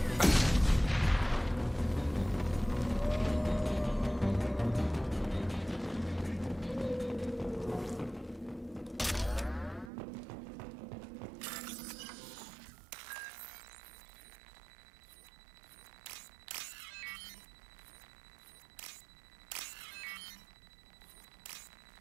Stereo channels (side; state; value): left; drops out; at 9.9 s